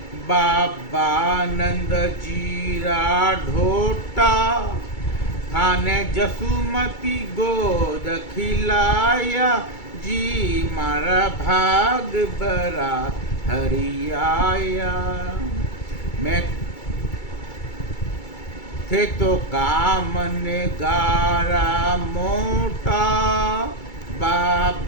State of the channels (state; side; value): late; right; 2.3 ms